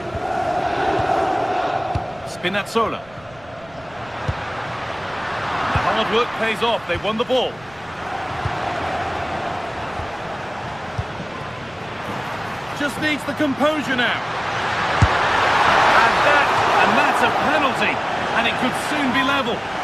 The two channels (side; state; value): right; noise; rumble, 25 dB below the sound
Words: Spinazzola. The hard work pays off, they won the ball. Just needs the composure now. And that's a penalty. And it could soon be level.